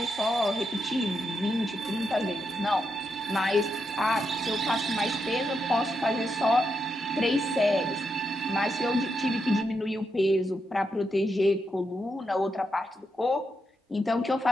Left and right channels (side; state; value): both; normal; correlation 0.83